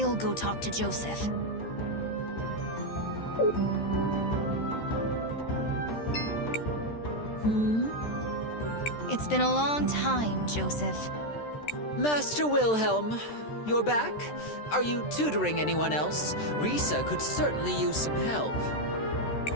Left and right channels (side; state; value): right; late; 13 ms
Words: go talk to Joseph. It's been a long time, Joseph. Master Wilhelm, you're back? Are you tutoring anyone else? Risa could certainly use some help.